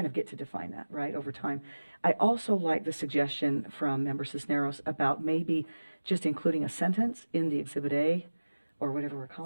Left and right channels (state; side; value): inverted; both; correlation -1.00